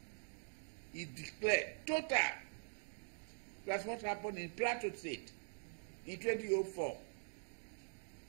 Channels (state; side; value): silent; left; digital silence